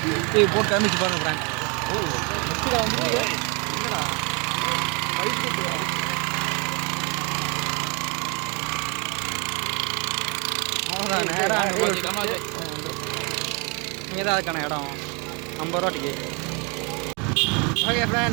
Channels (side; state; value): left; quieter; 31.9 dB